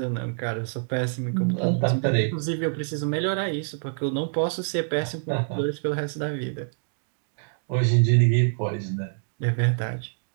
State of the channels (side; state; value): left; silent; digital silence